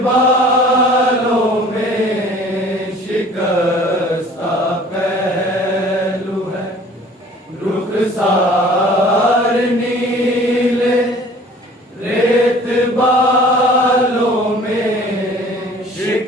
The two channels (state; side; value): normal; both; correlation 0.50